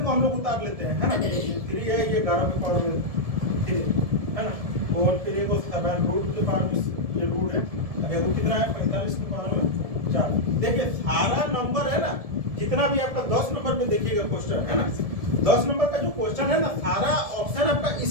को हम लोग उतार लेते हैं, है ना। 3 है, ये 11 के पावर में 3, है ना, और फिर ये 7 रूट के पावर में ये रूट है, अगर वो कितना है 45 के पावर में 4। देखिए सारा नंबर है ना, जितना भी आपका 10 नंबर में देखिएगा क्वेश्चन, है ना, 10 नंबर का जो क्वेश्चन है ना, सारा ऑप्शन आपका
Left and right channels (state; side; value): late; left; 1.7 ms